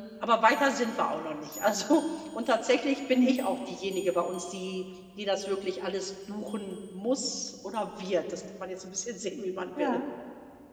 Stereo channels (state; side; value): identical; both; correlation 1.00